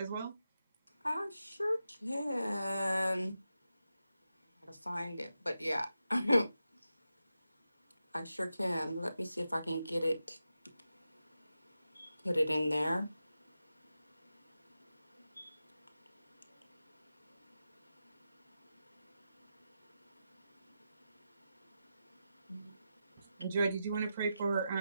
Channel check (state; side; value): inverted; both; correlation -0.90